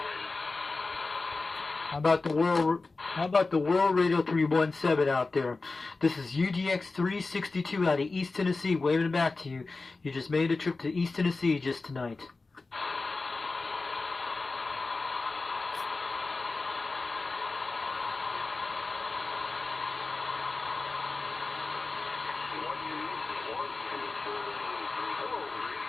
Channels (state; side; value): quieter; right; 3.7 dB